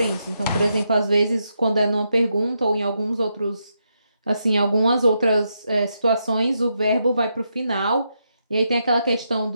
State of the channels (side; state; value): both; inverted; correlation -0.82